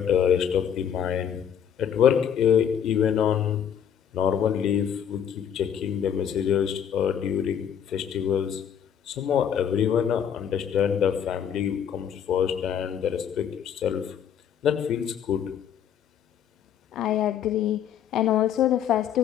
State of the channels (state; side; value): quieter; right; 8.7 dB